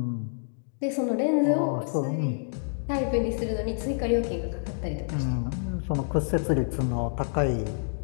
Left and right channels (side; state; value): right; silent; digital silence